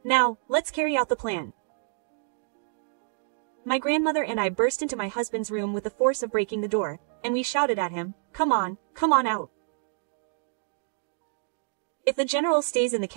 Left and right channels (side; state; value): left; silent; digital silence